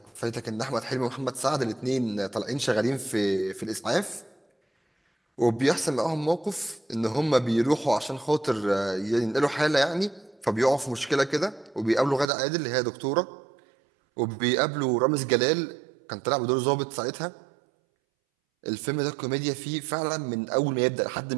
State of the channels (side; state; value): left; drops out; at 12.3 s